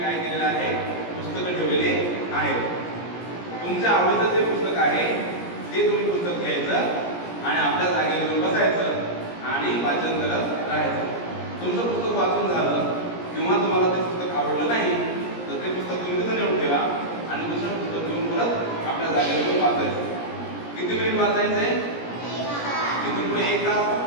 केलेलं आहे, पुस्तकं ठेवलेले आहेत. तुमच्या आवडीचं जे पुस्तक आहे ते तुम्ही पुस्तक घ्यायचं आणि आपल्या जागेवर येऊन बसायचं आणि वाचन करत राहायचं. तुमचं पुस्तक वाचून झालं किंवा तुम्हाला ते पुस्तक आवडलं नाही तर ते पुस्तक तुम्ही तिथं नेऊन ठेवा आणि दुसरं पुस्तक घेऊन परत आपल्या जागेवर येऊन वाचायचं. किती मिनिट वाचायचंय? इथून पुढे 1 तास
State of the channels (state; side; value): late; right; 17 ms